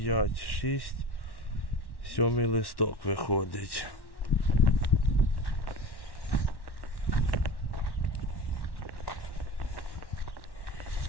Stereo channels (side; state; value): right; late; 1.1 ms